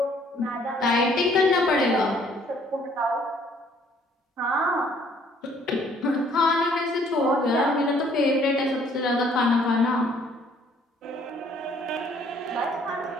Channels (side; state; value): both; normal; correlation 0.61